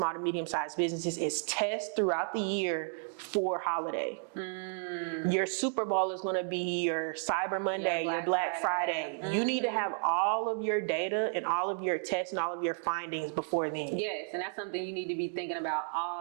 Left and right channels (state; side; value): silent; left; 56 dB below the other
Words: to medium-sized businesses is test throughout the year for holiday. Your Super Bowl is going to be your Cyber Monday, your Black Friday. You need to have all of your data and all of your tests and all of your findings before then. Yes, and that's something you need to be thinking about